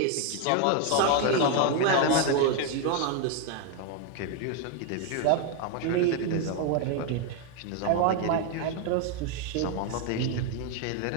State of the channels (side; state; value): both; different; correlation 0.01